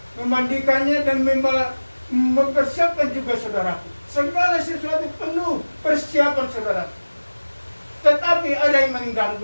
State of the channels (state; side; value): inverted; both; correlation -1.00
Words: memandikannya dan mempersiapkan juga, saudaraku. Segala sesuatu penuh persiapan, saudaraku. Tetapi ada yang